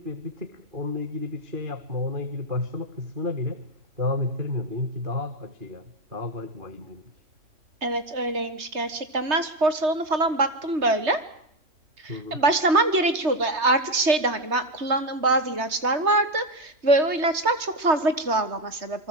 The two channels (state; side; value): late; left; 3.2 ms